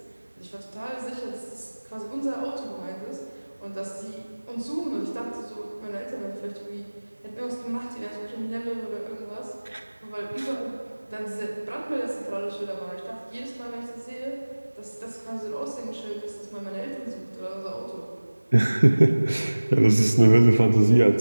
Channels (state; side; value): inverted; both; correlation -1.00